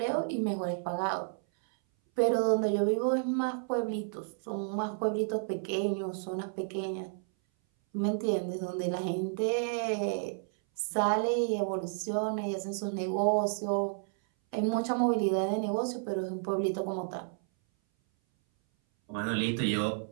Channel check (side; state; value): left; silent; 57 dB below the other